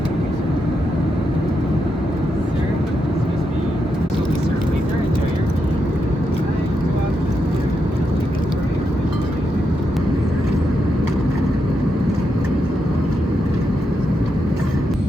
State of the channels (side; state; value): both; normal; correlation 0.83